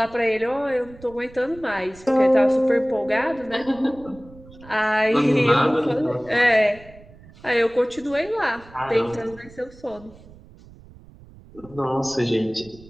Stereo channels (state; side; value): noise; right; rumble, 22 dB below the sound